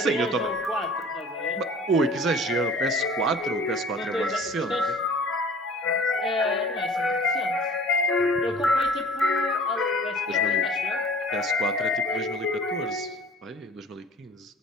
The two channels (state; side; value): normal; both; correlation 0.47